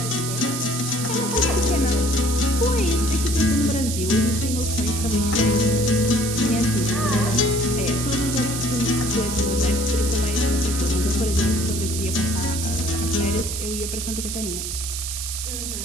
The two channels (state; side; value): noise; right; hiss, 5 dB below the sound